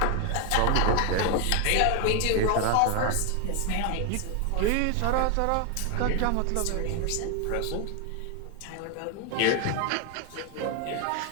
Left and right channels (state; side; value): different; both; correlation 0.01